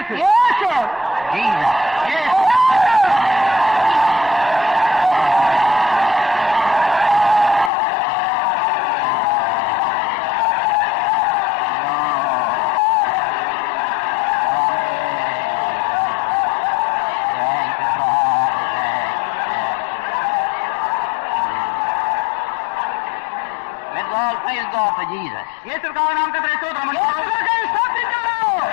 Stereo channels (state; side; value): drops out; right; at 7.7 s